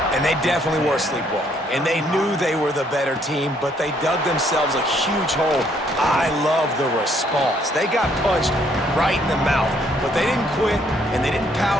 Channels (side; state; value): both; normal; correlation 0.67